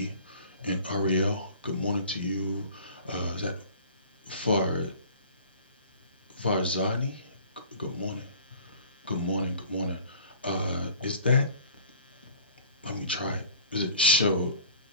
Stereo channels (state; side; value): inverted; both; correlation -0.47